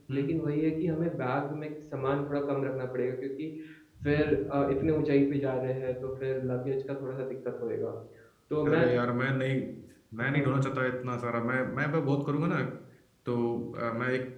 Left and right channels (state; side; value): identical; both; correlation 1.00